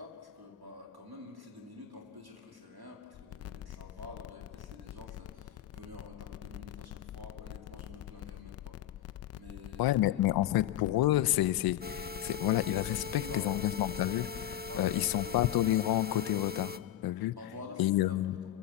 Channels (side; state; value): right; quieter; 12.4 dB